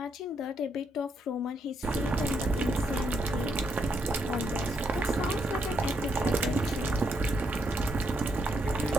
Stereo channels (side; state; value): both; normal; correlation 0.77